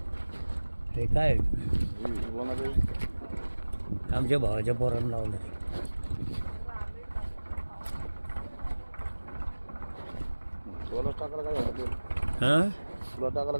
ते काय आमच्या भावाच्या पोरांना लावलं ते. हां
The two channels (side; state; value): both; inverted; correlation -1.00